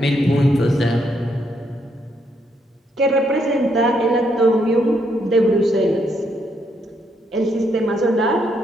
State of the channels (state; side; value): normal; both; correlation 0.75